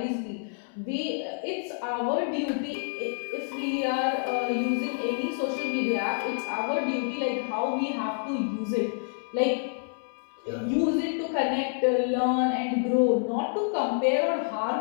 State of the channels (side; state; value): right; silent; digital silence